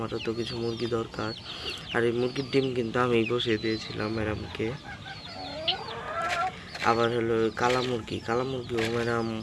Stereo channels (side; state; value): both; identical; correlation 1.00